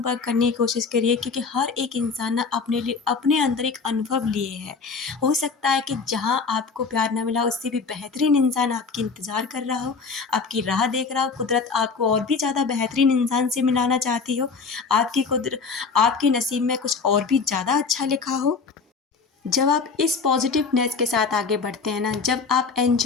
करने की कोशिश करिए, क्योंकि हर एक इंसान ना अपने लिए, अपने अंदर एक अनुभव लिए है। हो सकता है कि जहाँ आपको प्यार ना मिला, उससे भी बेहतरीन इंसान आपकी इंतज़ार कर रहा हो, आपकी राह देख रहा हो। कुदरत आपको और भी ज़्यादा बेहतरीन इंसान से मिलाना चाहती हो। आपके नसीब में कुछ और भी ज़्यादा अच्छा लिखा हो। जब आप इस पॉजिटिवनेस के साथ आगे बढ़ते हैं ना, जब आप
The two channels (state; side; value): quieter; right; 5.0 dB